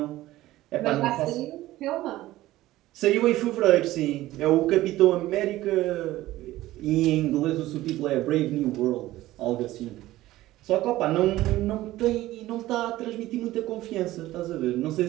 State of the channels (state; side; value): quieter; left; 16.1 dB